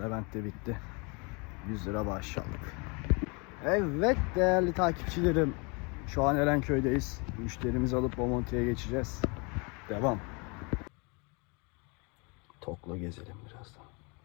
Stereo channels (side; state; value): right; quieter; 31.1 dB